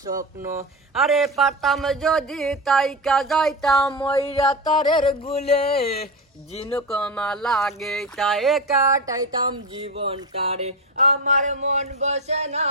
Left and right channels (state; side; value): normal; both; correlation 0.20